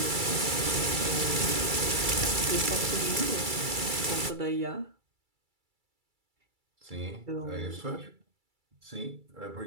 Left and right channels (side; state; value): left; late; 2.3 ms